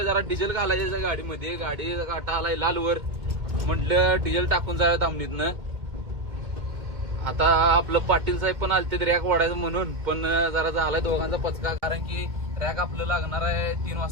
जरा डिझेल घालायचं गाडीमध्ये. गाडी काटा आलाय लालवर, म्हटलं डिझेल टाकून जाऊया दामणीतनं. आता आपलं पाटील साहेब पण आलते रॅक वाढायचं म्हणून, पण जरा झालाय दोघांचा पचका, कारण की रॅक आपलं लागणार आहे 3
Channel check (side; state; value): left; late; 2.4 ms